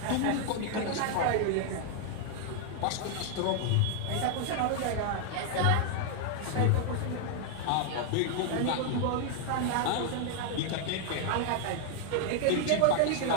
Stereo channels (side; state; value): both; different; correlation 0.00